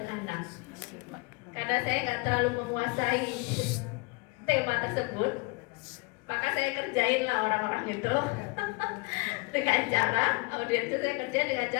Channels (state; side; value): quieter; right; 27.7 dB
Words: anak. Karena saya nggak terlalu menguasai tema tersebut, maka saya kerjain lah orang-orang itu dengan cara audiens itu saya kerjain dengan